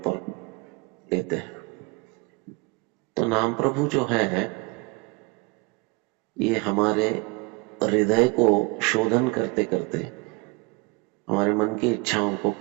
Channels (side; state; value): left; quieter; 26.6 dB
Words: लेते हैं। तो नाम प्रभु जो है ये हमारे हृदय को शोधन करते करते हमारे मन की इच्छाओं को